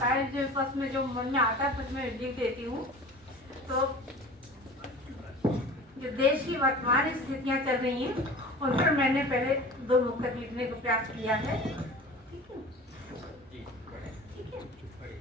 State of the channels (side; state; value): both; normal; correlation 0.39